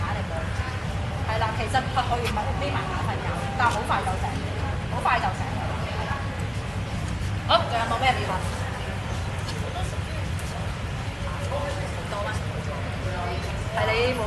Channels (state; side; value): identical; both; correlation 1.00